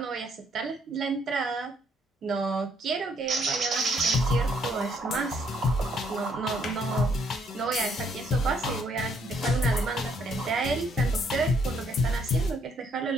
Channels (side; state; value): both; normal; correlation 0.68